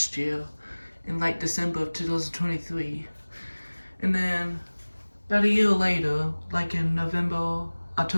year in like December of 2023. And then about a year later, like in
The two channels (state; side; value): inverted; both; correlation -1.00